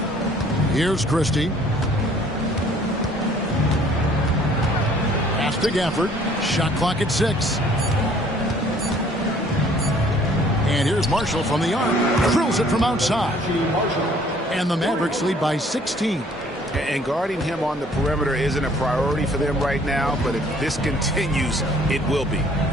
Here's Christie. Pass to Gafford. Shot clock at 6. And here's Marshall from the arc. Drills it from outside. And the Mavericks lead by 16. And guarding him on the perimeter isn't a priority for them right now, but if this continues, it will be.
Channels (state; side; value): normal; both; correlation 0.57